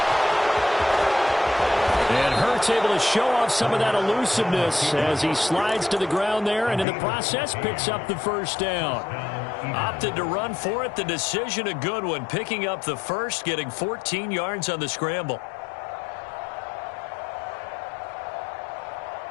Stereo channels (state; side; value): drops out; right; at 6.9 s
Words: Looks able to show off some of that elusiveness as he slides to the ground there, and in the process picks up the first down. Opted to run for it. The decision a good one. Picking up the first, getting 14 yards on the scramble.